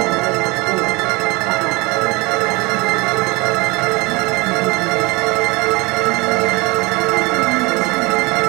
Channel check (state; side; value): quieter; left; 25.1 dB